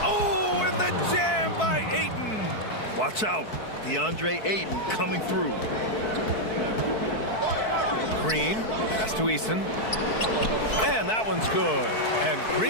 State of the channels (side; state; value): right; late; 4.6 ms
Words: Oh, and the jam by Ayton. Watch out. DeAndre Ayton coming through. Green, pass to Eason. And that one's good. And